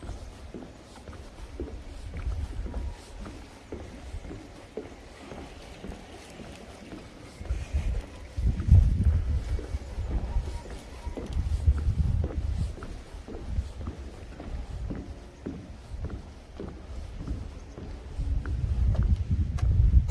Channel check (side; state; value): both; identical; correlation 1.00